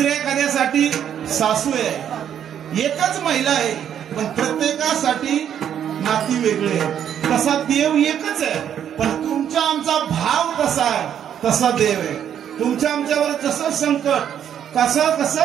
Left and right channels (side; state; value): left; quieter; 9.3 dB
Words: एखाद्यासाठी सासू आहे. एकच महिला आहे पण प्रत्येकासाठी नाती वेगळे आहेत. तसा देव एकच आहे, पण तुमचा आमचा भाव कसा आहे तसा देव आहे. तुमच्या आमच्यावर जसं संकट,